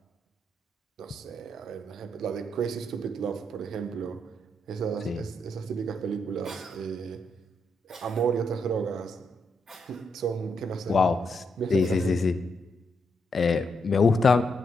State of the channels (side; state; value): both; normal; correlation 0.80